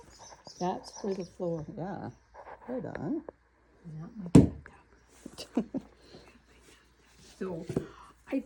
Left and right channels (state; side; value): identical; both; correlation 1.00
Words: That's for the floor. Yeah. Right on. Not my bathtub. So, I